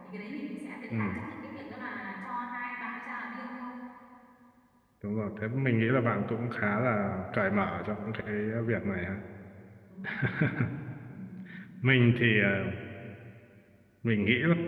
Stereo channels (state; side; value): identical; both; correlation 1.00